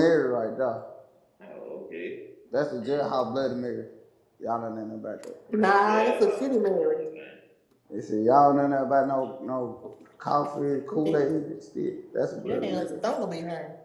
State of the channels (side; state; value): both; identical; correlation 1.00